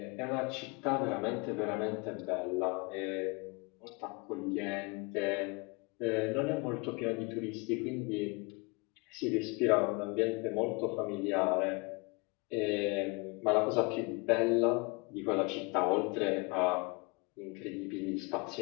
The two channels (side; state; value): right; quieter; 29.7 dB